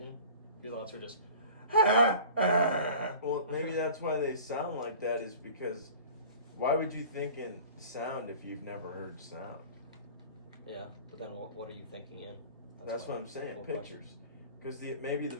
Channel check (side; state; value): both; inverted; correlation -0.43